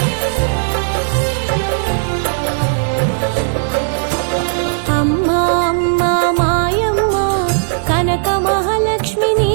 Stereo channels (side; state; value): left; silent; digital silence